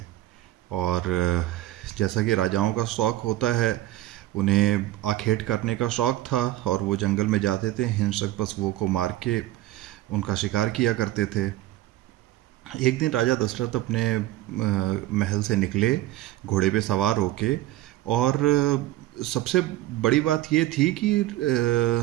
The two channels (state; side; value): quieter; left; 15.4 dB